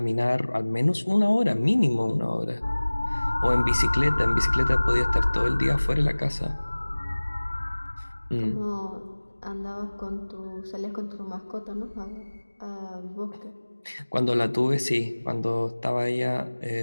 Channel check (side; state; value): both; inverted; correlation -1.00